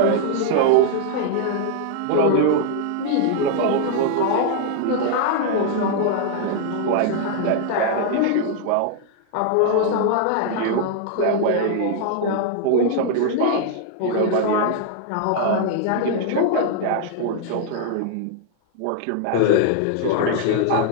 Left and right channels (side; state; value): both; different; correlation 0.00